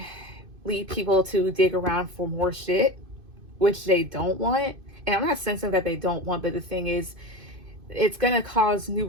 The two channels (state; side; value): late; left; 2.5 ms